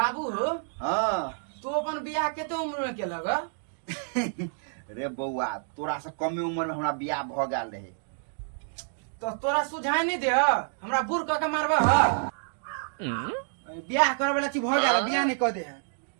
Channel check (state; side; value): silent; left; digital silence